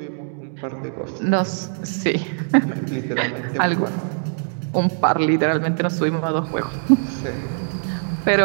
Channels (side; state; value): left; silent; 64 dB below the other